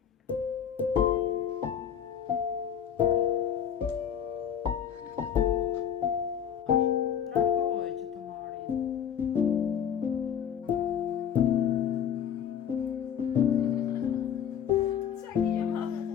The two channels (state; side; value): quieter; right; 8.7 dB